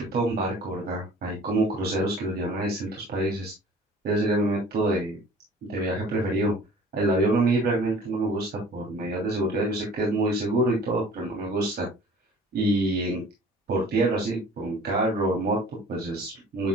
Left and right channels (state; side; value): normal; both; correlation 0.48